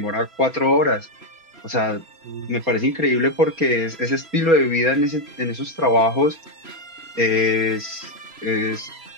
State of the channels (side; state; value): left; late; 4.3 ms